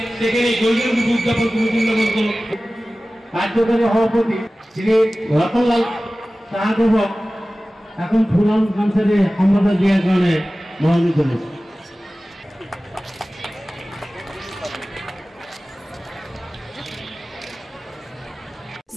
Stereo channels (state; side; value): normal; both; correlation 0.97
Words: সেখানে গোল্ডেন জুবলি উদযাপন কমিটির লগত কার্যকরী সভাপতি শ্রী রতনলাল সাহাদেবক এখন ফুলাম কামসারে সম্বোধন দেওয়ার কারণে মনোনীত হয়েছে